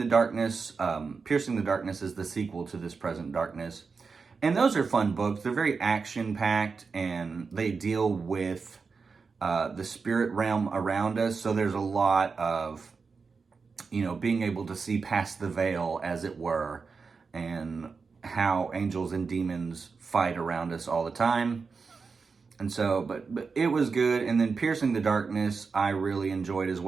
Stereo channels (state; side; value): quieter; left; 4.9 dB